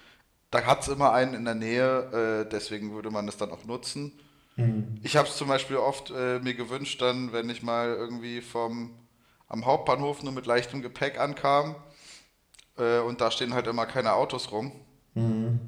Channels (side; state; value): both; identical; correlation 1.00